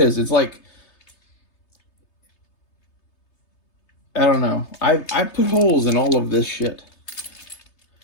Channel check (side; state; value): right; late; 3.3 ms